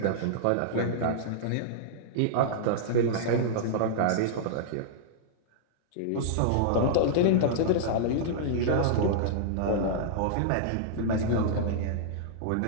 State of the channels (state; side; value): different; both; correlation -0.02